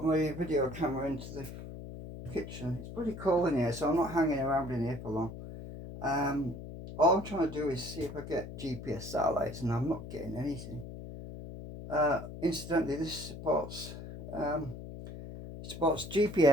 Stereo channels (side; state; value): left; noise; hum, 11 dB below the sound